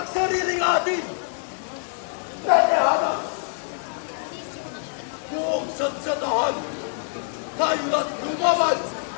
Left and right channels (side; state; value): right; silent; 62 dB below the other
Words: sariling atin! Nanahanas! Buong sadsadahan, tayo na't lumaban!